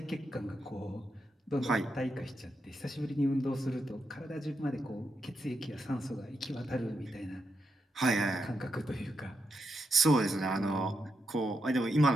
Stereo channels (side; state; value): both; normal; correlation 0.84